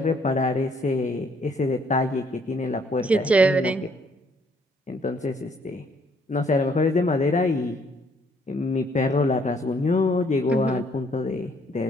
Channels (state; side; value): normal; both; correlation 0.65